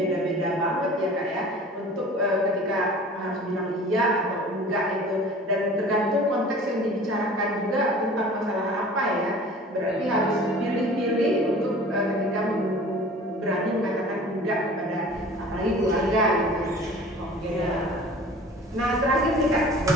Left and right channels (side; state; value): both; normal; correlation 0.44